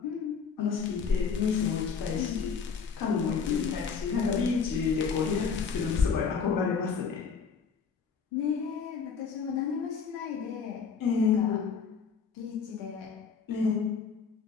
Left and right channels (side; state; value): right; quieter; 5.9 dB